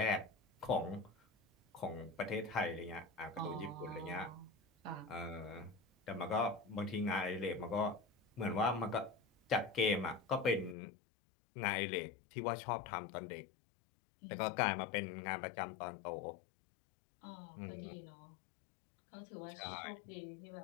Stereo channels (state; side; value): drops out; right; at 10.8 s